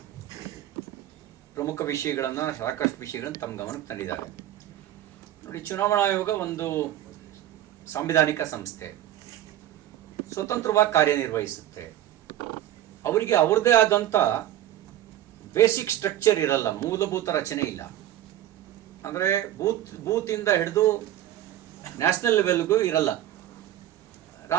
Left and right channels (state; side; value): quieter; left; 12.7 dB